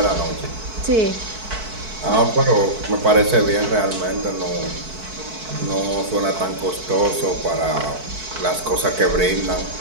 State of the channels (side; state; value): left; late; 4.6 ms